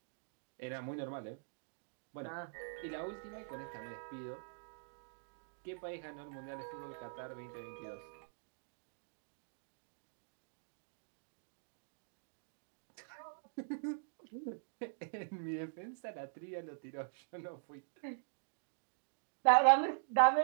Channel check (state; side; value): silent; left; digital silence